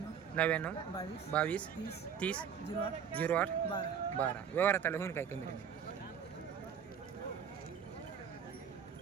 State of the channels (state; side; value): quieter; left; 7.7 dB